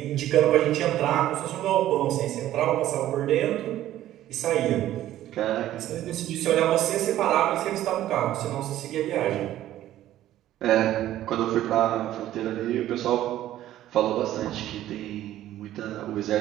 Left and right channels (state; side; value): quieter; left; 13.3 dB